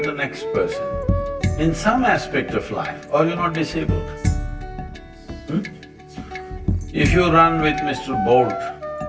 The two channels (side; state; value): both; identical; correlation 1.00